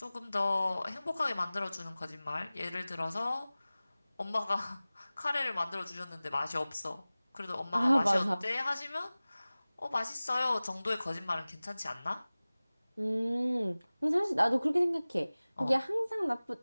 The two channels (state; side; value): inverted; both; correlation -0.98